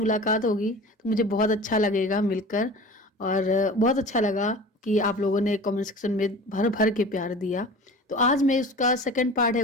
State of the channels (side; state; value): both; normal; correlation 0.38